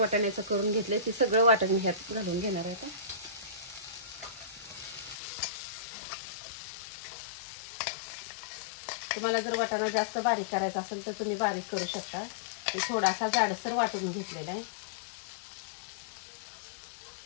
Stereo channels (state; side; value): drops out; right; at 5.2 s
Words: करून घेतले ते सगळं वाटण ह्यात घालून घेणार आहे. तुम्हाला जर वाटाणा जास्त बारीक करायचा असेल तर तुम्ही बारीक करू शकता. मी थोडासा जाडसर वाटून घेतलेला आहे.